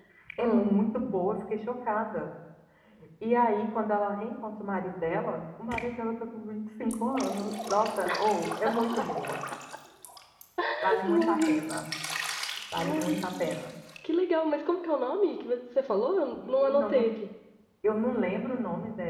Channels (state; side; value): identical; both; correlation 1.00